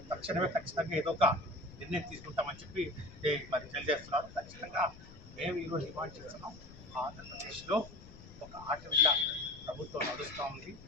తక్షణమే ఖచ్చితంగా ఏదో ఒక నిర్ణయం తీసుకుంటామని చెప్పి మరి తెలియజేస్తున్నారు. ఖచ్చితంగా మేము ఈరోజు డిమాండ్ చేస్తున్నాం, ఆంధ్రప్రదేశ్లో ఒక ఆటవిక ప్రభుత్వం నడుస్తూ ఉంది.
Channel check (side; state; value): left; noise; rumble, 18 dB below the sound